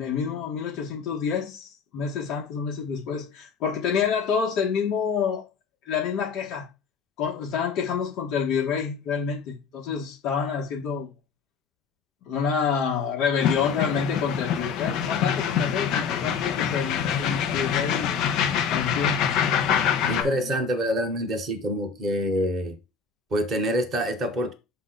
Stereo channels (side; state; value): right; quieter; 5.4 dB